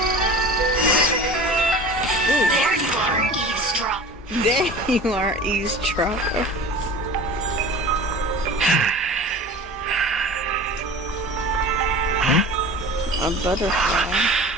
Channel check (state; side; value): normal; both; correlation 0.38